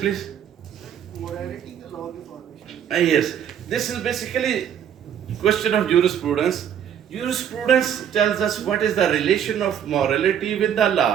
Morality, the law of the formation. Yes, this is basically question of jurisprudence. Jurisprudence tells us what is the relation of morality with the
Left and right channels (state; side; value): quieter; left; 9.1 dB